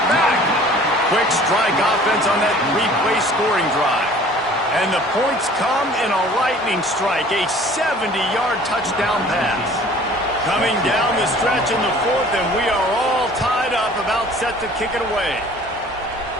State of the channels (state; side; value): normal; both; correlation 0.49